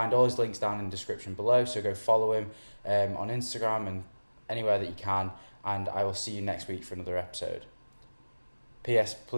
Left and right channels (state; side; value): inverted; both; correlation -1.00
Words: all his links down in the description below, so go follow him on Instagram and anywhere that you can, and I will see you next week for another episode. P.S.